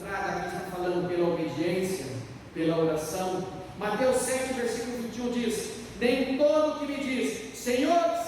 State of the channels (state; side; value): identical; both; correlation 1.00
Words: aqui está falando pela obediência, pela oração. Mateus 7, versículo 21 diz: nem todo que me diz Senhor,